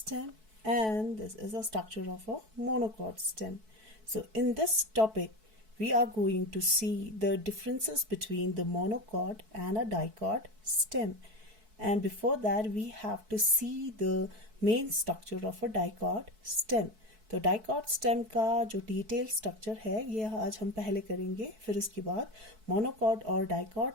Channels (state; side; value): late; left; 4.6 ms